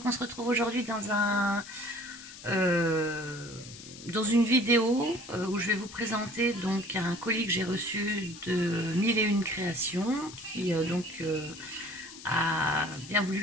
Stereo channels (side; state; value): left; noise; hiss, 15 dB below the sound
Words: on se retrouve aujourd'hui dans une vidéo où je vais vous présenter donc un colis que j'ai reçu de 1001 créations qui a bien